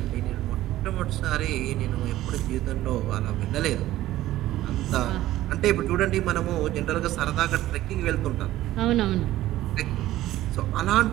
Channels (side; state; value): left; quieter; 14.9 dB